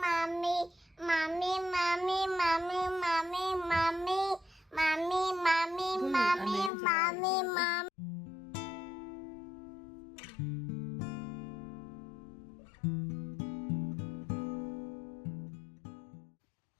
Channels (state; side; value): drops out; right; at 6.7 s